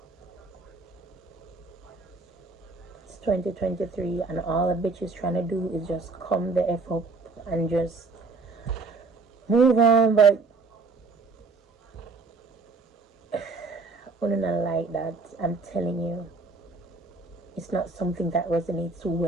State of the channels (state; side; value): quieter; left; 3.9 dB